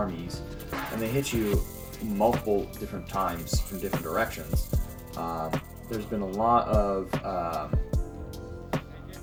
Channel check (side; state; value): both; identical; correlation 1.00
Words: and they hit you multiple different times from different directions. There's been a lot of